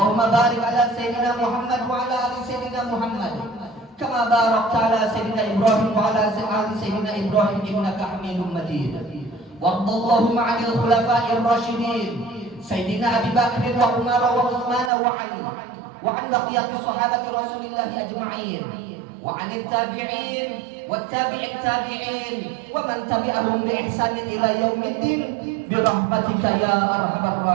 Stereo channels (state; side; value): drops out; left; at 14.9 s